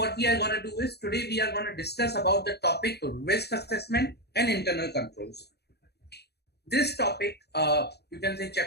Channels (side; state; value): right; late; 0.48 ms